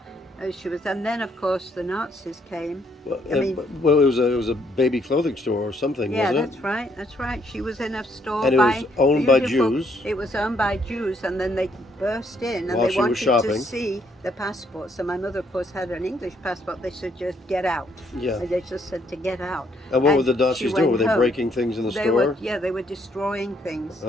she was. And then, of course, the Nazis came. Well, I mean- it was a baby clothing store or something, Yeah, wasn't it? that's right. That's right. She was in a store. And it was owned by Jews. It was owned by Jews, and then they burst in, and While they she was wanted shopping. to see the passport. So my mother, of course, had an English passport. They said, "Just get out." Yeah. They just said to get out. And what were the she Nazis doing? went Were they home. breaking things in the They store? they were destroying things.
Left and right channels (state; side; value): normal; both; correlation 0.70